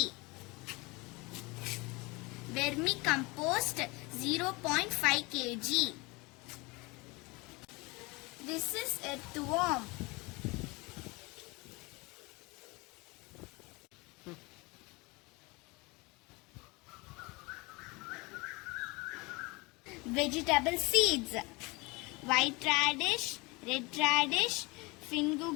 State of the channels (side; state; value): right; quieter; 25.4 dB